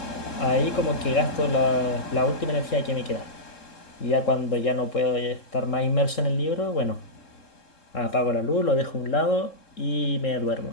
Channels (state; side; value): late; right; 3.7 ms